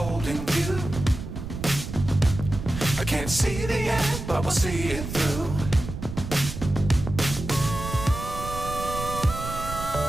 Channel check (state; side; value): noise; right; rumble, 8 dB below the sound